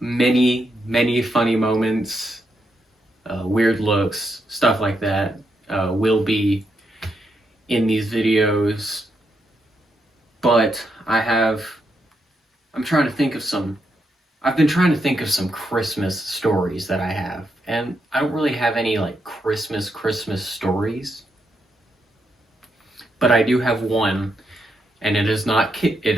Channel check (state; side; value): normal; both; correlation 0.81